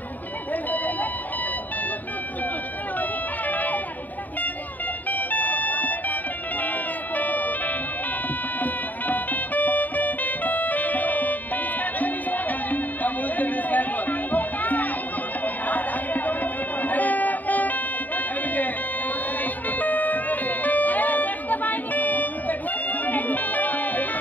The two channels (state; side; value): late; right; 0.084 ms